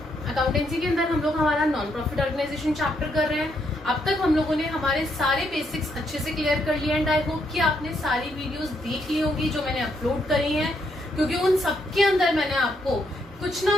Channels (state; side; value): normal; both; correlation 0.75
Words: Accountancy के अंदर हम लोग हमारा नॉन प्रॉफिट ऑर्गेनाइजेशन चैप्टर कर रहे हैं। अब तक हम लोगों ने हमारे सारे बेसिक्स अच्छे से क्लियर कर लिए एंड आई होप कि आपने सारी वीडियोस देख ली होंगी जो मैंने अपलोड करी हैं, क्योंकि उन सबके अंदर मैंने आपको कुछ ना